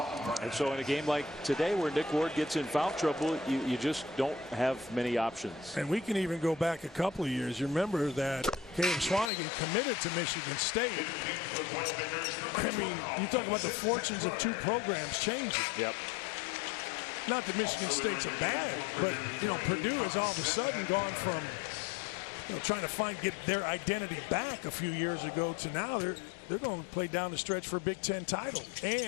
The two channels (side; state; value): right; drops out; at 9.3 s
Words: And so in a game like today where Nick Ward gets in foul trouble, you just don't have many options. And we can even go back a couple of years. You remember that Caleb Swanigan committed to Michigan State. I mean, you talk about the fortunes of two programs changing. Yep. Not that Michigan State's a bad, but, you know, Purdue has all of a sudden gone from, you know, trying to get their identity back a few years ago to now they're going to play down the stretch for a Big Ten title